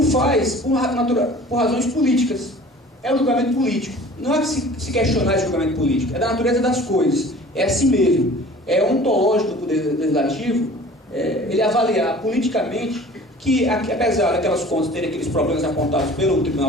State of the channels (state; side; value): normal; both; correlation 0.45